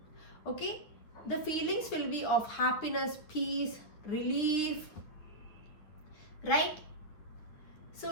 Okay, the feelings will be of happiness, peace, relief, right? So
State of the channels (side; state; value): right; late; 9.8 ms